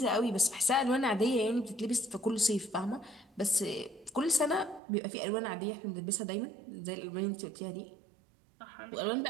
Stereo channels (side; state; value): left; drops out; at 4.8 s